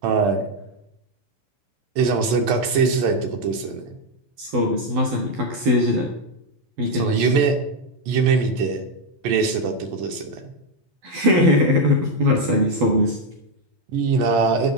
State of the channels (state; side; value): late; left; 12 ms